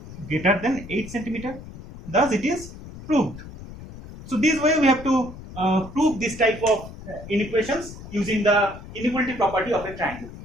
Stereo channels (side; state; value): left; noise; rumble, 14 dB below the sound